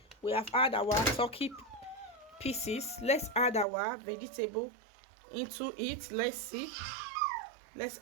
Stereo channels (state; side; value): drops out; left; at 3.7 s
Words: We have added our turkey pieces. Let's add our vegetable into it. Let's see. Let's